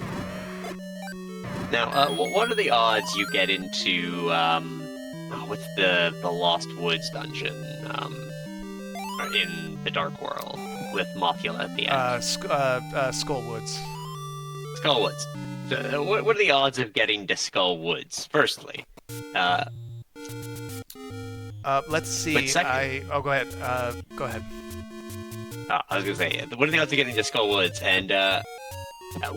Now, what are the odds you get into, what's the Lost Woods dungeon, in the Dark World, with Mothula at the end? Skullwoods. Skullwoods. So, what are the odds of getting to Skullwoods, firstly? Let's see. But second- Oh, go ahead. Go ahead. I was gonna say, what are the odds of getting to Skullwoods, and,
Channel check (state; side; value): identical; both; correlation 1.00